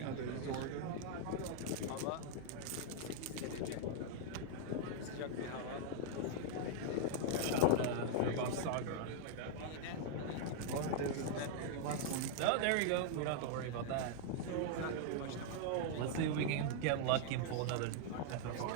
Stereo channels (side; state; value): both; different; correlation -0.01